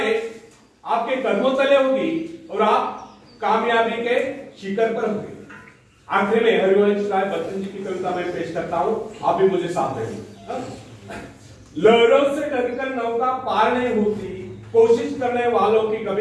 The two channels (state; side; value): identical; both; correlation 1.00